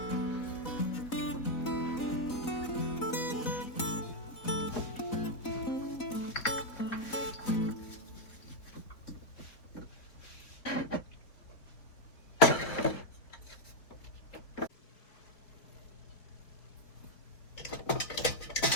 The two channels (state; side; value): late; right; 4.0 ms